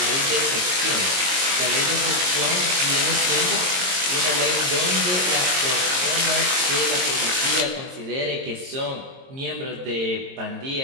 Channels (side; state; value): left; late; 22 ms